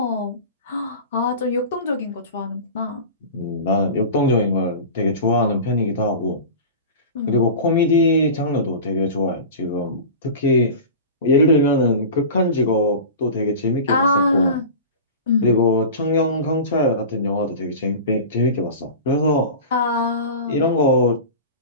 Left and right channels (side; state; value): both; inverted; correlation -0.33